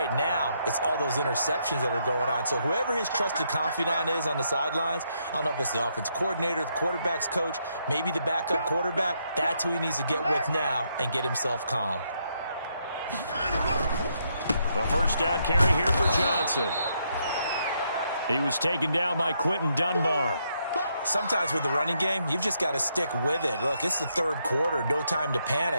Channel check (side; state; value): both; inverted; correlation -0.77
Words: now, it's all those interceptions that are going on. So whoever his trusted confidant is on the sidelines, I don't know if it's the offense coordinator, the quarterback's coach, maybe the backup quarterback, that's who he needs to get with now and get himself calm. The first down carry here for Johnson. He was taken down by Quentin Dunbar. Sometimes with the running game, you've just got to stick with it. Look, it's the 3rd quarter, no time to